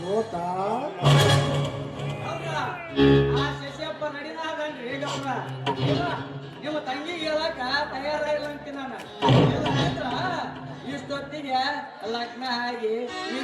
ಗೌಡ್ರ, ಆ ಶಶಿಯಪ್ಪ ನಡಿನಾಗನ್ರಿ ಗೌಡ್ರ. ನಿಮ್ಮ ತಂಗಿಗೆ ಹೇಳಕ ತಯಾರಾಗಿಲ್ಲ ಅಂತೀನಿ ನಾನು. ಇಷ್ಟೊತ್ತಿಗೆ ಲಗ್ನ ಆಗಿ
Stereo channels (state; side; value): identical; both; correlation 1.00